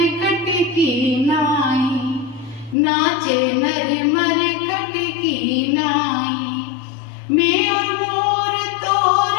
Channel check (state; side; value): drops out; right; at 2.8 s